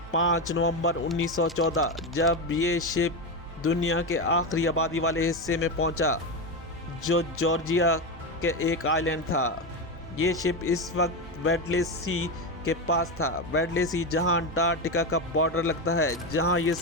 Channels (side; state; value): both; normal; correlation 0.14